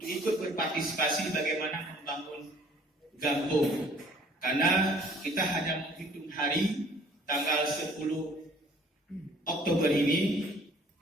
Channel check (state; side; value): normal; both; correlation 0.55